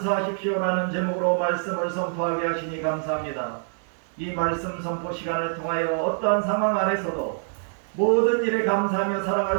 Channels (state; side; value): silent; left; 62 dB below the other